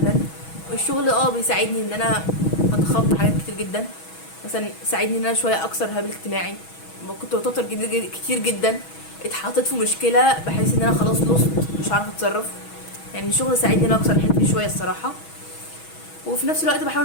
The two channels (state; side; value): late; right; 6.2 ms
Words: والشغل بيساعدني ان انا اتخطى حاجات كتير جدا. مثلا ساعدني ان انا شويه اكسر هابل اجتماعي. ما كنت بتوتر كتير جدا، اتحطيت في مشكله بحيث ان انا خلاص لوست، مش عارفه اتصرف. يعني الشغل ساعدني ان انا اكسر الحته دي شويه الصراحه. وفي نفس الوقت